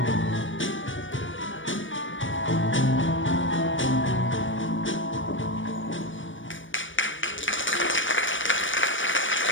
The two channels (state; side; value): late; right; 0.56 ms